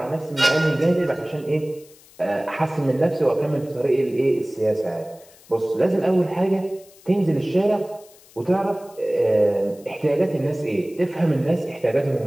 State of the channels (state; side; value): noise; left; hiss, 25 dB below the sound